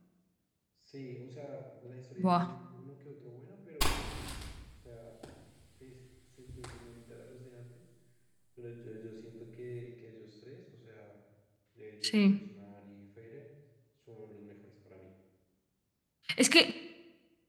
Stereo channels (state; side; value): identical; both; correlation 1.00